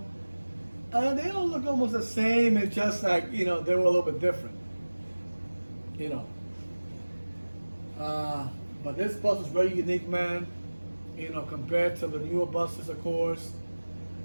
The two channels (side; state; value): both; inverted; correlation -1.00